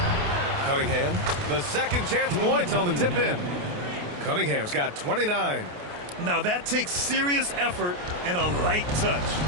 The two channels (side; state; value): left; late; 28 ms